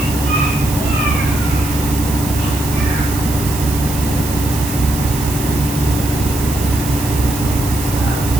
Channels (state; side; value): noise; right; hiss, 9 dB below the sound